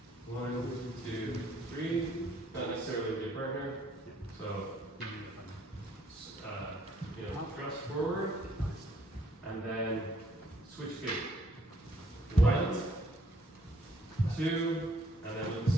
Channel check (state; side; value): normal; both; correlation 0.65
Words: 1, 2, 3. Not necessarily with your partner. So, thrust forward, and then switch feet. 1, 2, and then with the